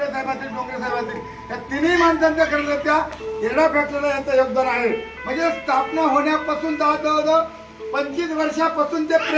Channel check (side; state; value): both; identical; correlation 1.00